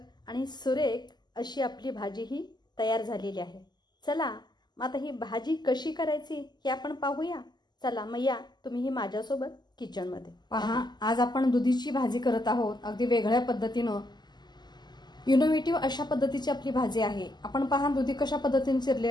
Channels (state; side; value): late; right; 0.21 ms